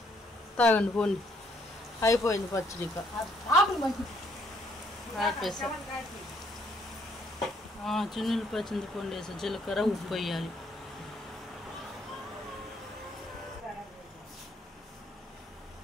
తాగండి పోండి. అయిపోయింది పచ్చడి. చిన్నులు పచ్చింది పండు వేసి జీలకర్ర ఉప్పు వేయాలి.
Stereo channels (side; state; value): both; normal; correlation 0.68